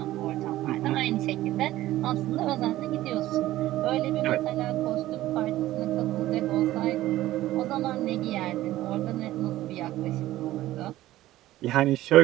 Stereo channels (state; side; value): quieter; left; 15.4 dB